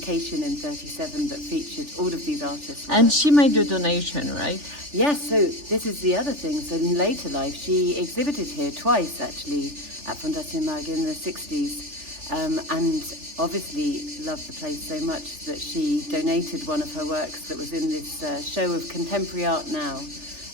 in 37 that featured all of these artists. And she made a donation, right? Yes, so this is the other thing. So in later life, she exhibited here twice, actually, at Fondation Mag in the 60s, and obviously loved the place so much that she donated one of her works that was in this show of contemporary art now.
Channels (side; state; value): left; late; 3.4 ms